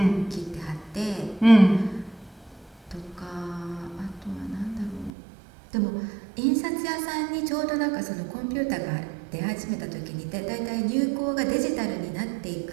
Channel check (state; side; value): drops out; left; at 5.1 s